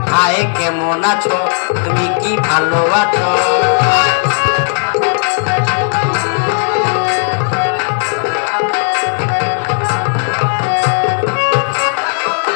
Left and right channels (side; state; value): right; silent; 56 dB below the other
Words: হায় কেমন আছো, তুমি কি ভালো আছো?